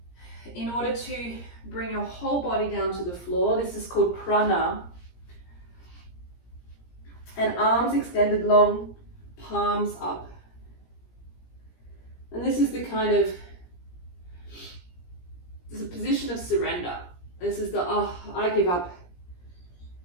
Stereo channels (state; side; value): late; right; 17 ms